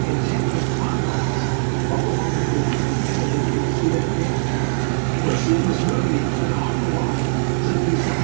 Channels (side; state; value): left; silent; digital silence